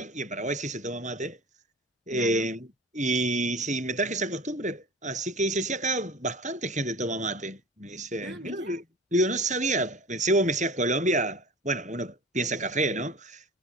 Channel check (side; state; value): both; normal; correlation 0.37